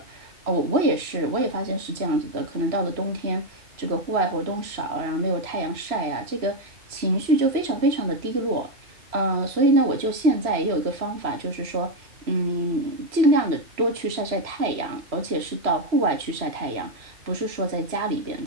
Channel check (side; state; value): left; late; 3.0 ms